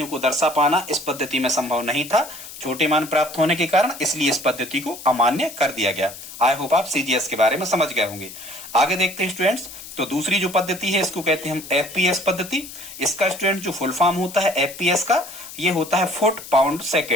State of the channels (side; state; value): left; noise; hiss, 14 dB below the sound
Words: को दर्शा पाना इस पद्धति में संभव नहीं था, छोटे मान प्राप्त होने के कारण, इसलिए इस पद्धति को अमान्य कर दिया गया। आई होप आप सीजीएस के बारे में समझ गए होंगे। आगे देखते हैं स्टूडेंट्स, तो दूसरी जो पद्धति है इसको कहते हैं हम एफपीएस पद्धति। इसका स्टूडेंट जो फुल फॉर्म होता है एफपीएस का, ये होता है फुट पाउंड